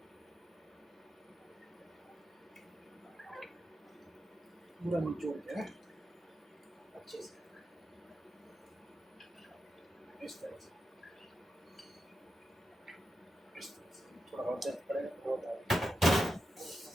पूरा निचोड़ के अच्छे से इस तरह से थोड़ा और दर्द पड़ेगा तो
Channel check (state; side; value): normal; both; correlation 0.89